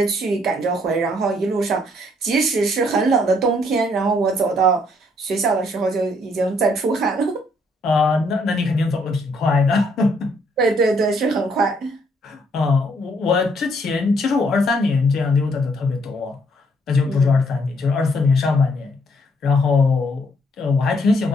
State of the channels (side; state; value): both; normal; correlation 0.68